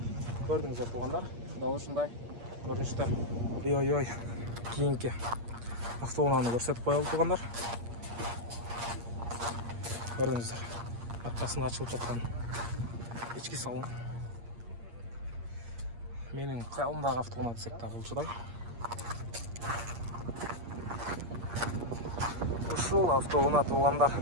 Көрдіңіздер туғандар. Дал ушундай көрүнүштө. Ой. Кийинки автоунааны көрсөтүп коелу туғандар. Көрдіңіздер. Аркасына ачылып жаткан ички салон. Менин кыялымдагы автоунаа десек да болчудай. Ушул автоунаа туғандар.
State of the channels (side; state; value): left; late; 8.5 ms